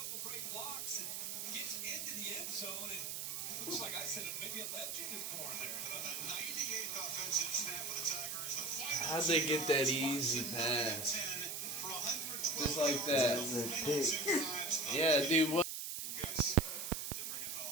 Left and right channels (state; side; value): noise; right; hiss, 4 dB below the sound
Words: Looks like I said maybe a legend is born there. How'd they get that easy pass? Just like that. Yeah, dude, what?